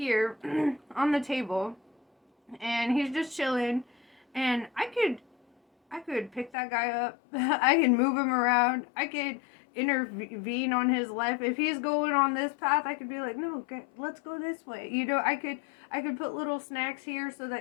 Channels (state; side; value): drops out; right; at 6.5 s